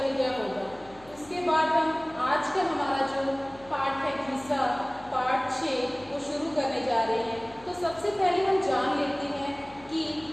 गया होगा। उसके बाद हम आज का हमारा जो पाठ है घिसा, पाठ 6, वो शुरू करने जा रहे हैं। तो सबसे पहले हम जान लेते हैं कि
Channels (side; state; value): left; noise; hum, 24 dB below the sound